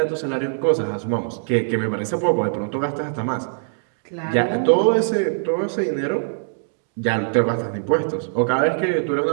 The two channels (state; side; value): silent; left; digital silence